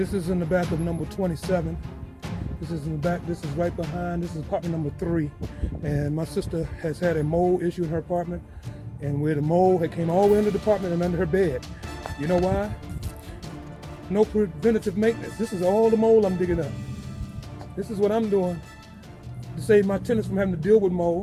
is in the back of number 27. This is in the back. This is right behind. This is apartment number 3. And my sister has had a mold issue in her apartment. And where the mold had came all the way into the apartment and under her bed. You know why? No preventative maintenance. This is all the mold I'm digging up. This is what I'm doing to save my tenants from having to deal with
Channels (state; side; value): identical; both; correlation 1.00